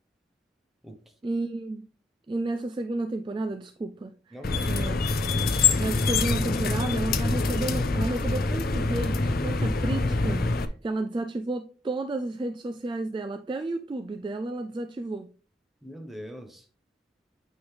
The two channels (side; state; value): both; normal; correlation 0.73